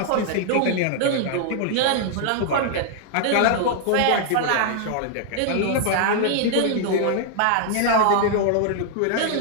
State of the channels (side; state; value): both; different; correlation -0.01